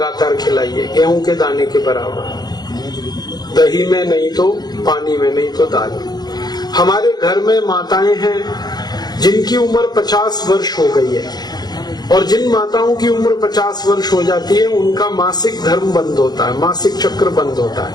खिलाइए, गेहूं के दाने के बराबर, दही में नहीं तो पानी में, नहीं तो दाल में। हमारे घर में माताएं हैं जिनकी उम्र 50 वर्ष हो गई है, और जिन माताओं की उम्र 50 वर्ष हो जाती है उनका मासिक धर्म बंद होता है, मासिक चक्र बंद होता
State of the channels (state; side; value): late; right; 0.19 ms